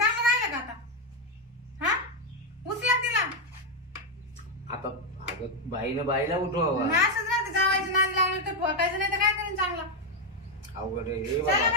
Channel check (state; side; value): normal; both; correlation 0.04